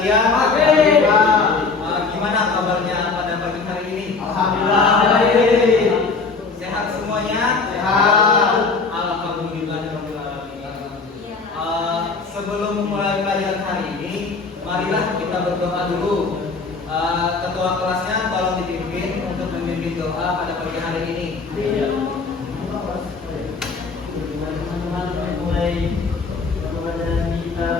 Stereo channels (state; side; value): quieter; right; 4.4 dB